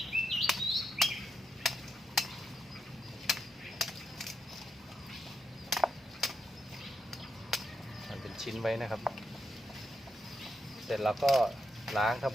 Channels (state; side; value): normal; both; correlation 0.82